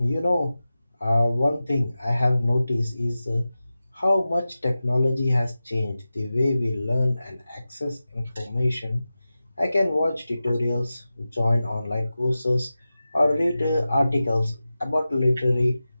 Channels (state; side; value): inverted; both; correlation -0.94